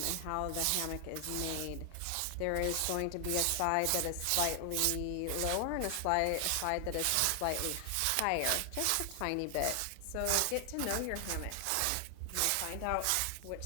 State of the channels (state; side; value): different; both; correlation 0.00